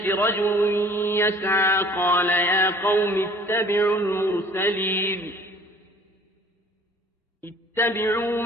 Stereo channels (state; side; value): normal; both; correlation 0.51